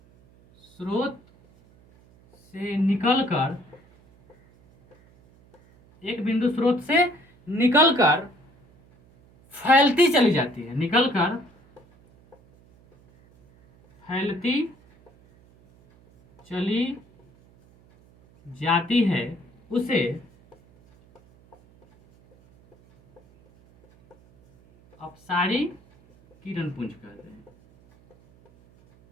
स्रोत से निकलकर, एक बिंदु स्रोत से निकलकर फैलती चली जाती है, निकलकर फैलती चली जाती है, उसे अपसारी किरण पुंज कहते हैं,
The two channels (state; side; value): noise; right; hum, 29 dB below the sound